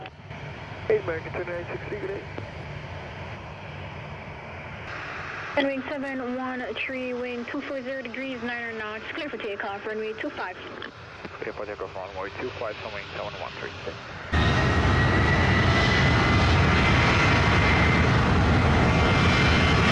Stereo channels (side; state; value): both; identical; correlation 1.00